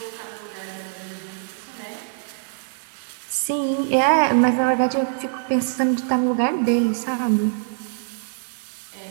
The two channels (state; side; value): silent; left; digital silence